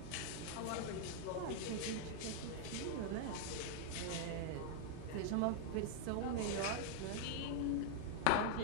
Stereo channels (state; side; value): different; both; correlation -0.01